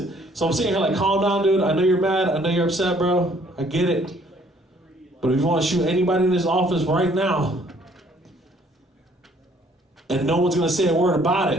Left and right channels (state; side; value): normal; both; correlation 0.61